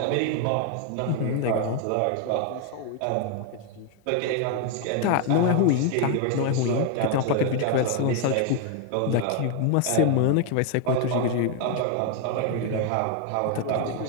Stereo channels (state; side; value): different; both; correlation 0.01